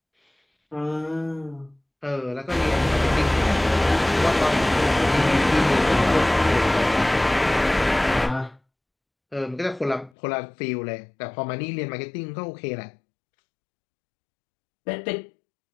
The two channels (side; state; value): right; drops out; at 10.1 s